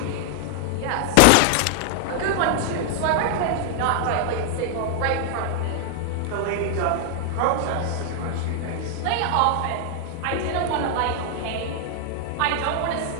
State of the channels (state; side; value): different; both; correlation 0.00